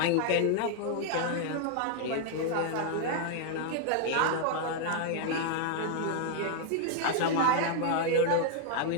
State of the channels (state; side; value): different; both; correlation 0.00